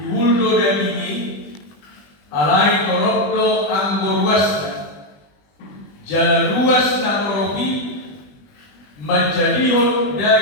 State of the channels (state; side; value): late; right; 20 ms